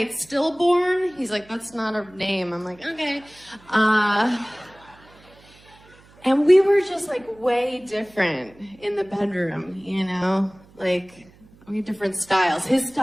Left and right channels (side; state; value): right; noise; hum, 27 dB below the sound